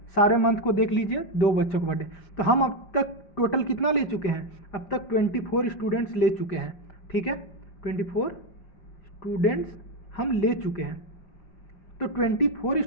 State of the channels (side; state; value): right; late; 5.0 ms